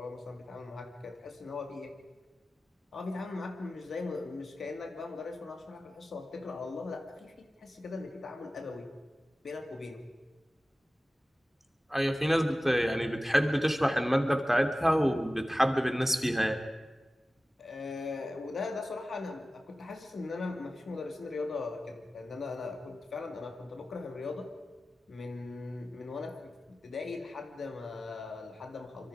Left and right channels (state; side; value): normal; both; correlation 0.95